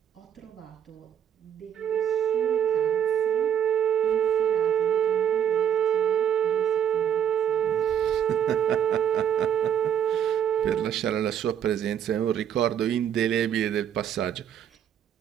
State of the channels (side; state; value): left; quieter; 9.4 dB